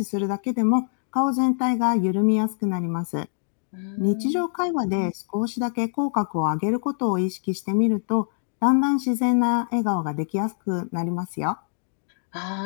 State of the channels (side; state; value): right; silent; digital silence